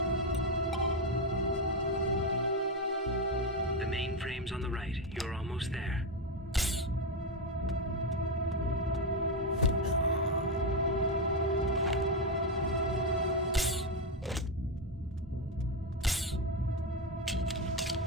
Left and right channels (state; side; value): normal; both; correlation 0.08